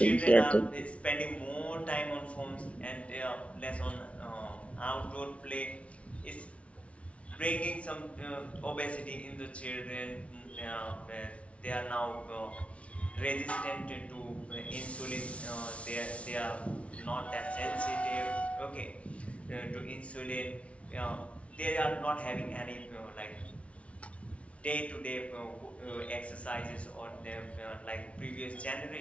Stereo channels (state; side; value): late; right; 0.063 ms